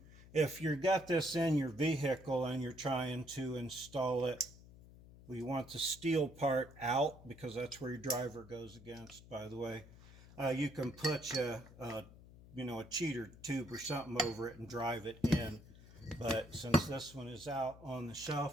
If you've got this in your vehicle and you're trying to install it, well, you want the steel part out, because that's where your driver goes against, by the way. You can put a cheater tube or something over it and drive it in. But since this one is out on the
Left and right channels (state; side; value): noise; left; hum, 19 dB below the sound